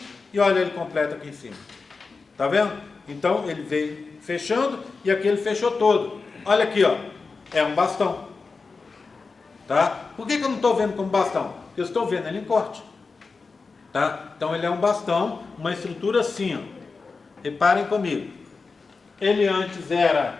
e olha ele completo aqui em cima. Tá vendo? Então, ele veio fechando e aqui ele fechou todo. Olha aqui, ó. É um bastão. Tá? Por que eu não estou vendo como bastão? Porque eu estou vendo ele em corte. Tá? Então, ele é um bastão, uma estrutura assim, ó. Reparem comigo. Ele antes era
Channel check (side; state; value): right; quieter; 4.4 dB